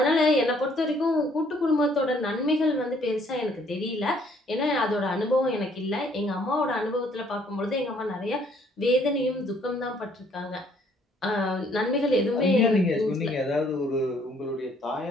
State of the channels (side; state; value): both; normal; correlation 0.63